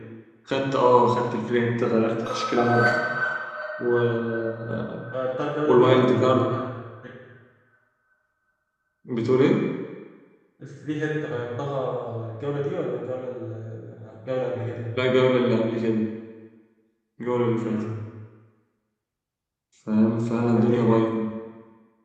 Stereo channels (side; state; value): both; identical; correlation 1.00